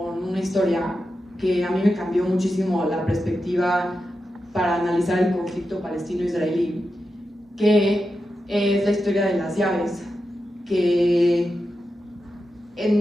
una historia que a mí me cambió muchísimo la perspectiva para analizar el conflicto palestino-israelí, que es la historia de las llaves, que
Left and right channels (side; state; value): both; normal; correlation 0.89